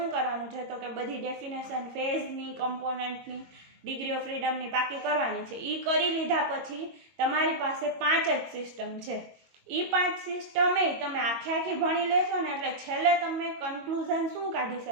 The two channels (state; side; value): late; left; 22 ms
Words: કરવાનું છે, તો કે બધી ડેફિનેશન ફેઝની, કમ્પોનન્ટની, ડિગ્રી ઓફ ફ્રીડમની પાકી કરવાની છે. એ કરી લીધા પછી તમારી પાસે 5 જ સિસ્ટમ છે. એ 5 સિસ્ટમ તમે આખી ભણી લેશો ને એટલે છેલ્લે તમે કન્ક્લુઝન શું કાઢી